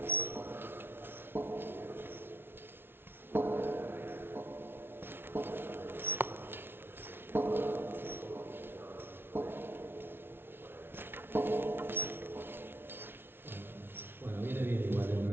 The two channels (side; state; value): left; late; 0.11 ms